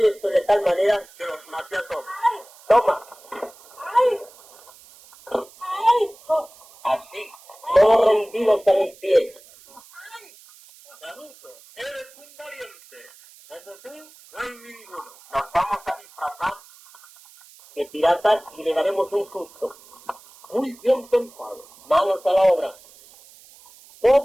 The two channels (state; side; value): noise; right; hiss, 24 dB below the sound